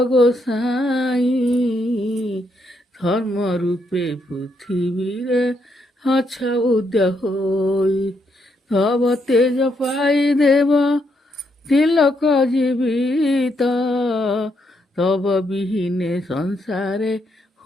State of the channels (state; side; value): normal; both; correlation 0.77